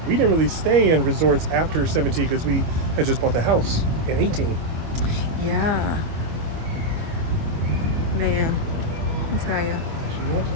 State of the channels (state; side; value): late; left; 25 ms